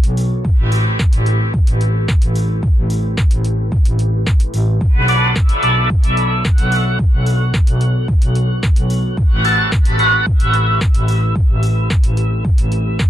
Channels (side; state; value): both; normal; correlation 0.88